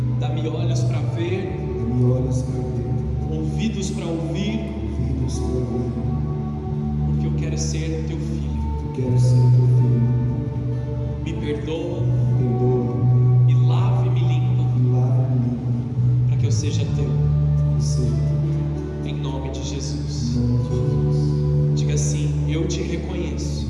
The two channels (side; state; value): both; identical; correlation 1.00